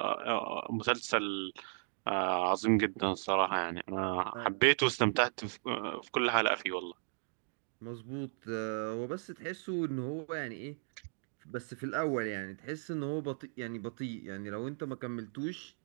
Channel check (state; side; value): silent; left; digital silence